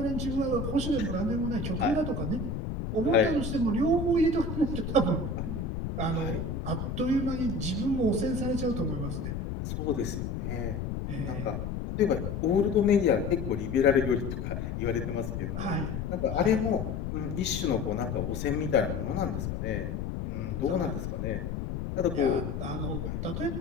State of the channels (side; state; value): left; noise; rumble, 4 dB below the sound